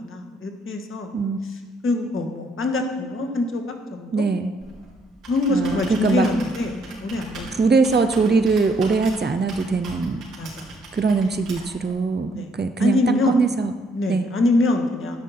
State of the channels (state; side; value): normal; both; correlation 0.69